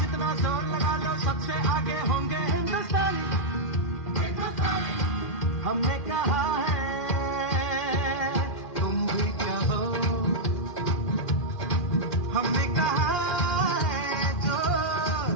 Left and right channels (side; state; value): right; late; 2.4 ms